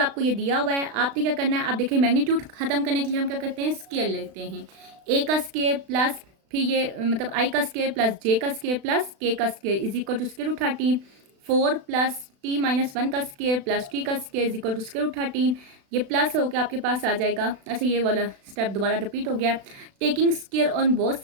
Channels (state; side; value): late; left; 36 ms